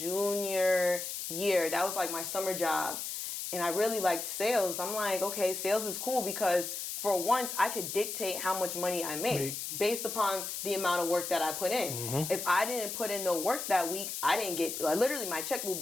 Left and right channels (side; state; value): left; noise; hiss, 5 dB below the sound